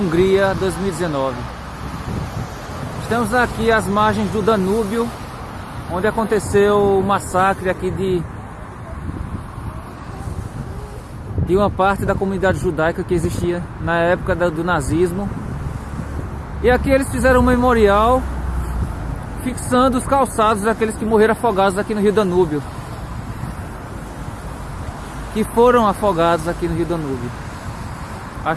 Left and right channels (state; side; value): identical; both; correlation 1.00